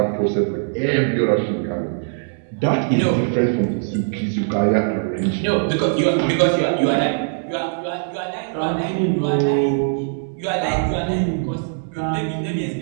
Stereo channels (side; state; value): left; silent; digital silence